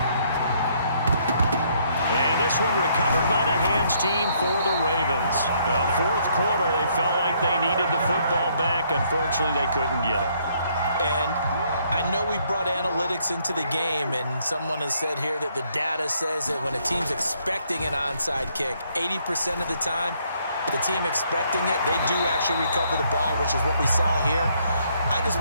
And this one recovered by the hands team for the Ravens. 4th quarter, they felt like they needed the football back. Unfortunately, they couldn't get it. And I know we brought analytics into the game, and someone has said here that the data says that when a team's expecting an onside kick, 80% of the time, the team expecting it, they do actually recover the ball, which is what we saw here. I just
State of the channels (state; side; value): inverted; both; correlation -0.69